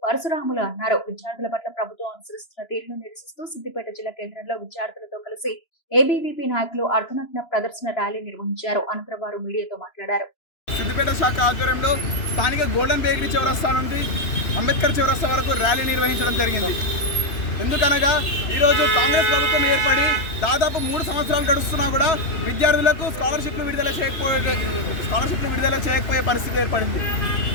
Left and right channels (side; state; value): right; late; 2.9 ms